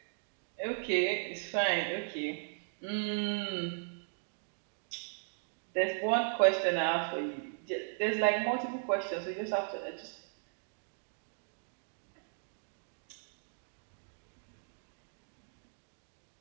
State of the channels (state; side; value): silent; left; digital silence